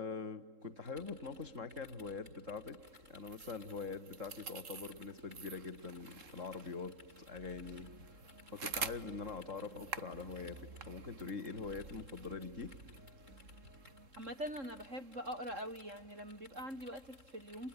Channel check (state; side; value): late; left; 3.7 ms